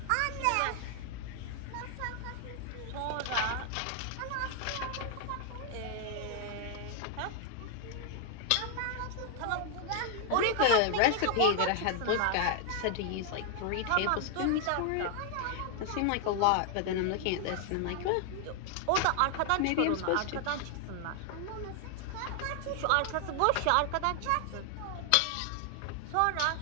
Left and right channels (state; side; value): different; both; correlation 0.00